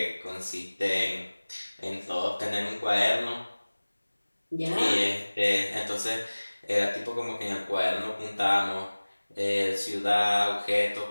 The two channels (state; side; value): inverted; both; correlation -1.00